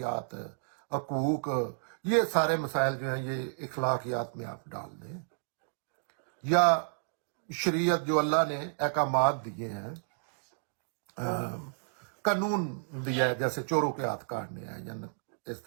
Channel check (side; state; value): left; silent; digital silence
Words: حقوق. یہ سارے مسائل جو ہیں یہ اخلاقیات میں آپ ڈال دیں، یا شریعت جو اللہ نے احکامات دیے ہیں، قانون دیا ہے، جیسے چوروں کے ہاتھ کاٹنے ہیں یا اس